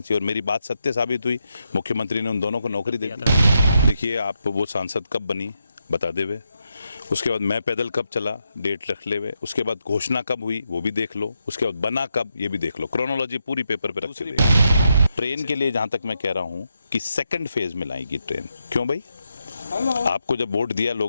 और मेरी बात सत्य साबित हुई। मुख्यमंत्री ने उन दोनों को नौकरी दे दी। देखिए आप वो सांसद कब बनी बता देवे, उसके बाद मैं पैदल कब चला डेट रख ले हुए, उसके बाद घोषणा कब हुई वो भी देख लो, उसके बाद बना कब ये भी देख लो, क्रोनोलॉजी पूरी पेपर पे रख के। ट्रेन के लिए जहां तक मैं कह रहा हूं कि सेकंड फेज में लाएगी ट्रेन। क्यों भाई, आपको जब वोट दिया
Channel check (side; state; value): both; inverted; correlation -0.83